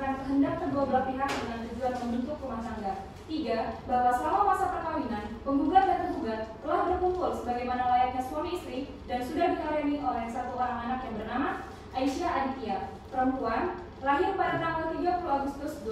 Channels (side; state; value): both; identical; correlation 1.00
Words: kehendak kedua belah pihak dengan tujuan membentuk rumah tangga. 3. Bahwa selama masa perkawinan, penggugat dan tergugat telah berkumpul sebagaimana layaknya suami istri dan sudah dikaruniai oleh satu orang anak yang bernama Aisyah Aditya, perempuan, lahir pada tanggal 30 Agustus